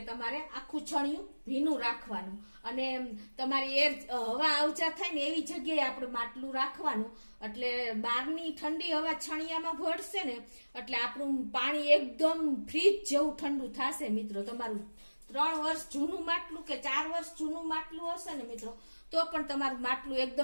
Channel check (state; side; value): inverted; both; correlation -1.00